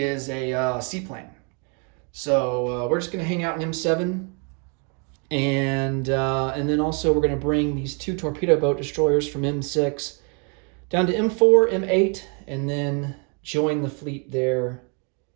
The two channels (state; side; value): quieter; left; 36.6 dB